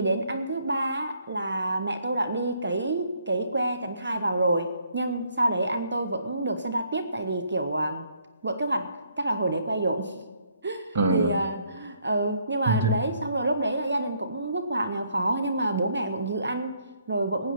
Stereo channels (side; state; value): both; inverted; correlation -0.69